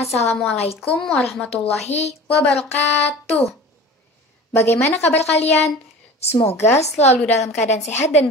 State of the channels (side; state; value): both; normal; correlation 0.38